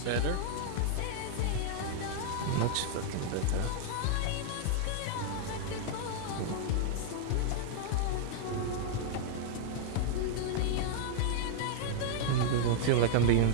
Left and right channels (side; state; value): both; different; correlation -0.01